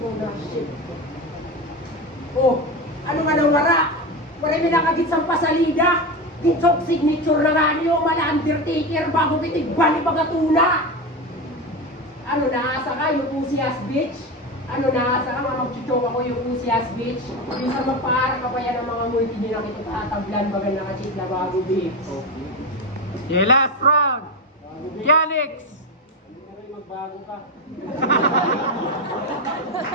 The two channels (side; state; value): both; normal; correlation 0.19